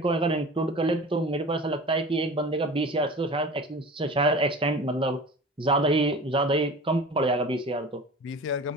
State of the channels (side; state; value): both; normal; correlation 0.38